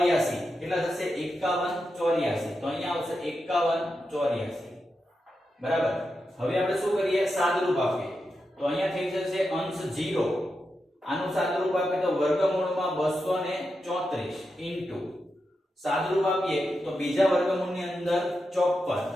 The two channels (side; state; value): both; normal; correlation 0.88